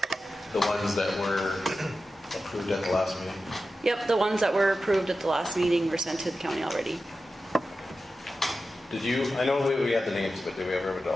The ones that were approved at the last meeting? Yep, the ones that were approved at the last meeting were sent to the county already. Did you, I know we had the names, but did we ever have a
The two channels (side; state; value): both; normal; correlation 0.92